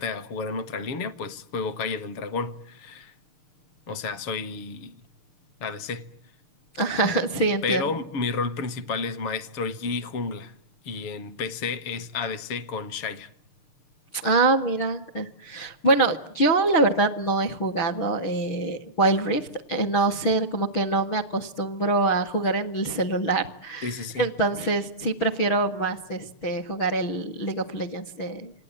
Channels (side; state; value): right; late; 6.6 ms